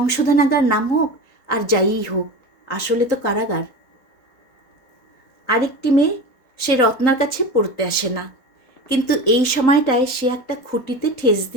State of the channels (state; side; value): late; right; 3.9 ms